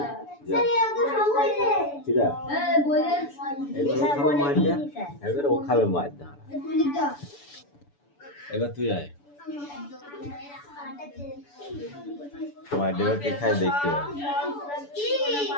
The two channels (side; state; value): right; late; 6.9 ms